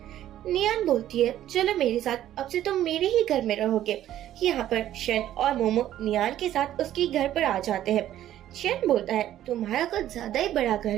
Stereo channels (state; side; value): quieter; left; 12.4 dB